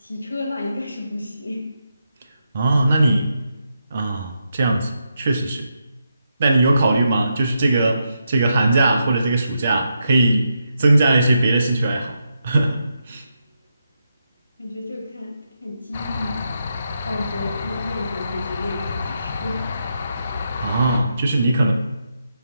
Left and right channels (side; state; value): both; inverted; correlation -0.83